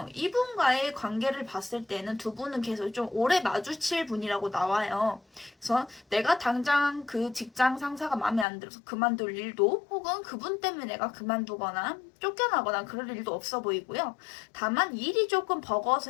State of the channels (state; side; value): drops out; right; at 8.5 s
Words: 이분과의 관계를 봤을 때는 두 분은 계속 좀 오래 마주칠 분이라고 나와요. 그래서 내가 당장 그 직장 상사가 마음에 안 들어서 그만둘 일도 혹은 그분 때문에 내가 그만두거나 쫓겨나거나 그럴 일도 없어 보이고요. 다만 일이 조금